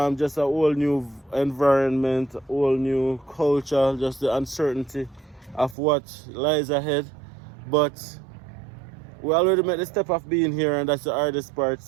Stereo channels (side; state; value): left; drops out; at 5.8 s